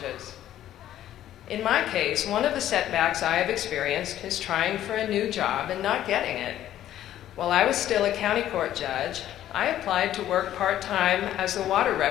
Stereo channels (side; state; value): right; quieter; 12.2 dB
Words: In my case, one of the setbacks I have experienced is trying for a new job and not getting it. While I was still a county court judge, I applied to work part-time as the water